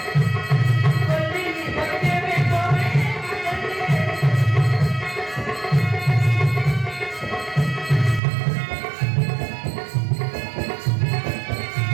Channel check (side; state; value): left; drops out; at 8.2 s